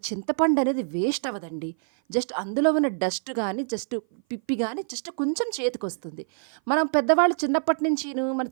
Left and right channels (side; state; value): left; silent; 56 dB below the other